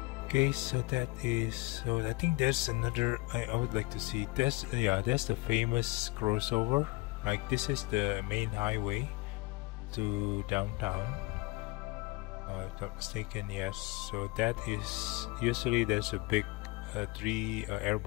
Okay, so that is, so I think there's another, I would like to see this. Yeah, that's the famous crossover. Like this is the main highway to downtown, if I'm not mistaken. Yes, so that is, usually there's a big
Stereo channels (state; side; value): quieter; right; 22.9 dB